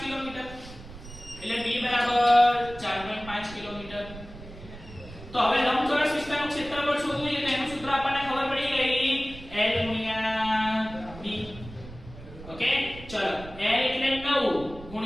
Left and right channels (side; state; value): right; noise; rumble, 16 dB below the sound